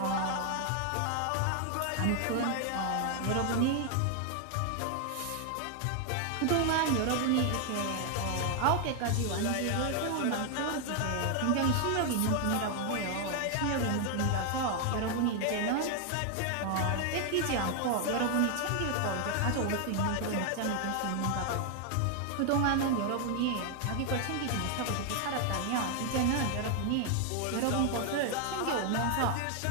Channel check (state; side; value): different; both; correlation 0.00